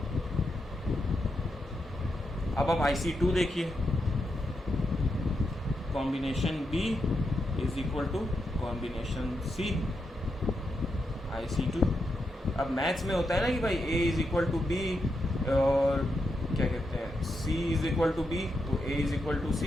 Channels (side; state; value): both; normal; correlation 0.84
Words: अब आप IC2 देखिए, combination B is equal to combination C। IC2। अब मैथ्स में होता है ना कि भाई A is equal to B और क्या कहते हैं, C is equal to B तो A is equal to